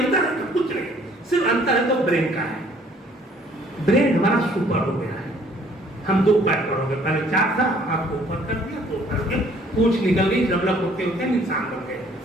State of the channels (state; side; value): normal; both; correlation 0.59